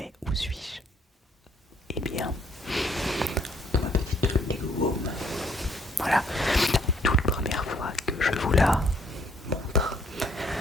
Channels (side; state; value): both; normal; correlation 0.65